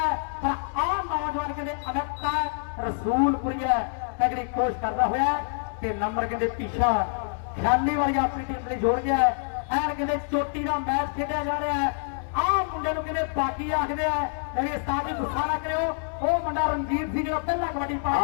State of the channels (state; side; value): silent; right; 61 dB below the other